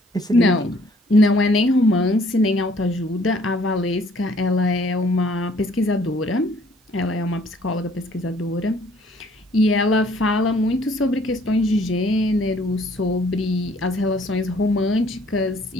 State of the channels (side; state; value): both; normal; correlation 0.60